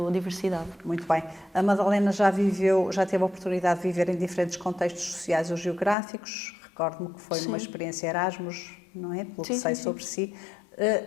a diversidade. Muito bem. A Madalena já teve a oportunidade de viver em diferentes contextos sociais ou geográficos. Recordo-me que foi numa experiência Erasmus, não é? Pelo que sei sobre si.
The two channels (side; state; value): right; drops out; at 6.0 s